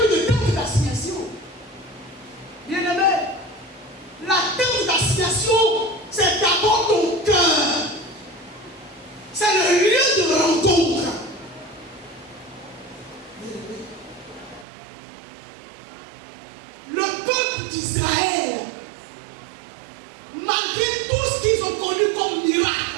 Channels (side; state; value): left; drops out; at 14.7 s